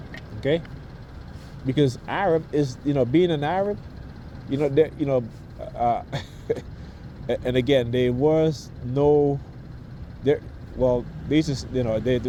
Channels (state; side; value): identical; both; correlation 1.00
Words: Okay, because Arab is, being an Arab, and again, there was no there. Well, they just,